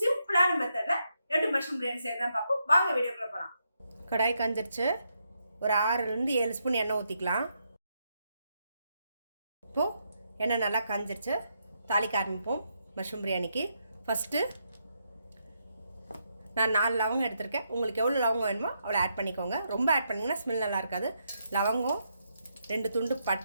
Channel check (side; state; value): both; inverted; correlation -0.80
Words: சிம்பிளான மெத்தட்ல எப்படி மஷ்ரூம் பிரியாணி செய்யறதுன்னு பார்ப்போம். வாங்க வீடியோக்குள்ள போகலாம். கடாய் காஞ்சிருச்சு. ஒரு 6லேருந்து 7 ஸ்பூன் எண்ணெய் ஊற்றிக்கலாம். இப்போது எண்ணெய் நல்லா காஞ்சிருச்சு, தாளிக்க ஆரம்பிப்போம் மஷ்ரூம் பிரியாணிக்கு. ஃபஸ்ட்டு நான் 4 லவங்கம் எடுத்திருக்கேன். உங்களுக்கு எவ்வளோ லவங்கம் வேணுமோ அவ்வளோ ஆட் பண்ணிக்கோங்க. ரொம்ப ஆட் பண்ணிங்கன்னா ஸ்மெல் நல்லா இருக்காது. லவங்கம், 2 துண்டு